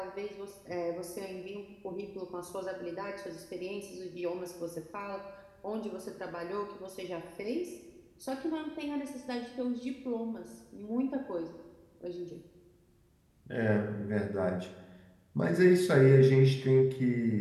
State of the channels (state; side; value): identical; both; correlation 1.00